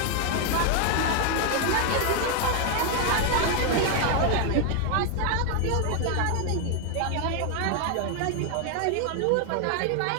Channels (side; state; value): both; different; correlation 0.01